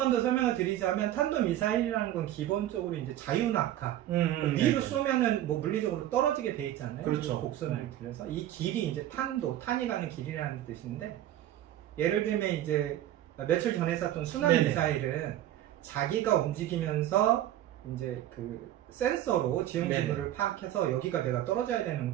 더 설명을 드리자면 탄도미사일이라는 건 기본적으로 이제 자유낙하 위로 쏘면은 물리적으로 떨어지게 돼 있잖아요. 그렇죠. 곡선을 들여서 이 길이 이제 탄이 가는 길이라는 뜻인데 예를 들면 이제 며칠 전에 쐈던 순항미사일은 자기가 움직이면서 이제 그 센서로 지형 지물을 파악해서 여기가 내가 떨어져야 되는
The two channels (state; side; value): quieter; left; 12.9 dB